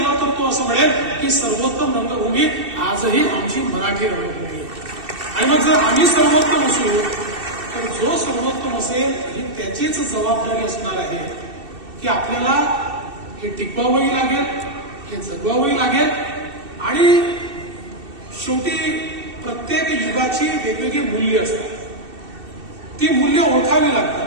तर तो असं म्हणेल की सर्वोत्तम रंगभूमी आजही आमची मराठी रंगभूमी. आणि मग जर आम्ही सर्वोत्तम असू तर जो सर्वोत्तम असेल ही त्याचीच जबाबदारी असणार आहे की आपल्याला हे टिकवावंही लागेल, हे जगवावंही लागेल. आणि शेवटी प्रत्येक युगाची वेगवेगळी मूल्य असतात. ती मूल्य ओळखावी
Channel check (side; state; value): left; late; 2.7 ms